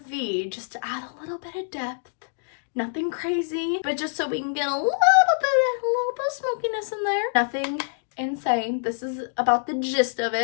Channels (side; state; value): right; silent; digital silence